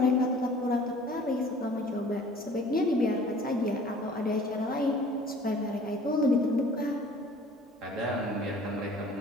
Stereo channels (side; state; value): both; normal; correlation 0.50